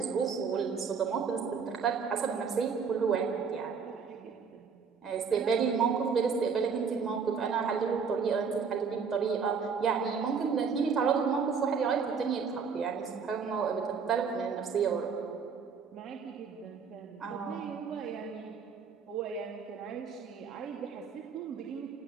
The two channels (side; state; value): left; quieter; 5.9 dB